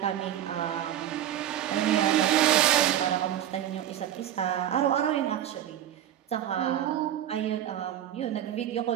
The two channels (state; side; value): quieter; left; 11.2 dB